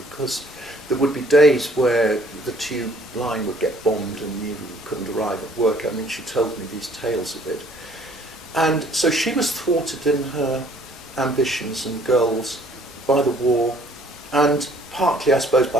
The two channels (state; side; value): normal; both; correlation 0.59